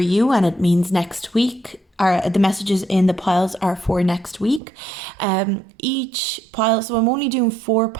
and it means next week. The messages in the piles are for next week. Each pile, so I'm only doing 4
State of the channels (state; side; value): drops out; left; at 4.6 s